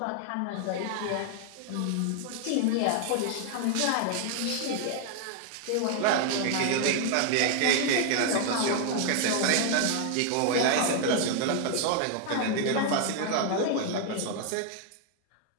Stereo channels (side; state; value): both; different; correlation 0.00